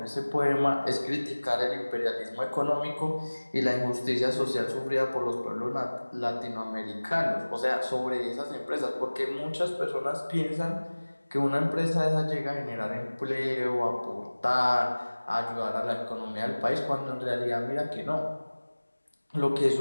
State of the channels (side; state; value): both; inverted; correlation -1.00